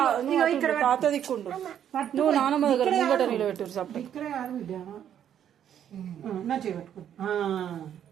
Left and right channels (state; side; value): quieter; left; 9.7 dB